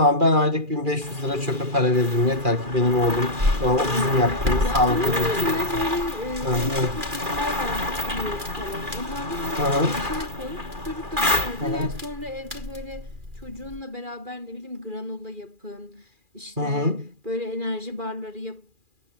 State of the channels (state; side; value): late; left; 2.4 ms